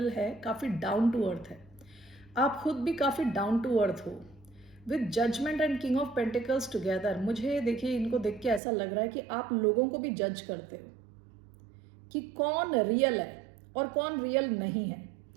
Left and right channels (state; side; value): drops out; left; at 8.6 s